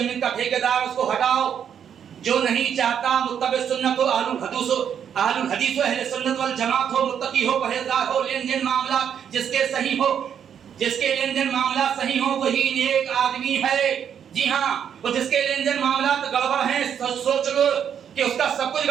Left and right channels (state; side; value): quieter; left; 8.4 dB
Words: کا ٹھیکیدار اس کو ہٹاؤ. جو نہیں چاہتا متبع سنت ہو، اہل الحدیث ہو، اہل سنت والجماعت ہو، متقی ہو، پرہیزگار ہو، لین دین معاملات جس کے لین دین معاملات صحیح ہو وہی نیک آدمی ہے. جی ہاں، وہ جس کے لین دین معاملات گڑبڑ ہیں سوچ لو کہ اس کا سب کچھ